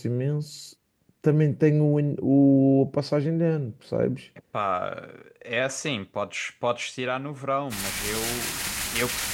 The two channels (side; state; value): both; identical; correlation 1.00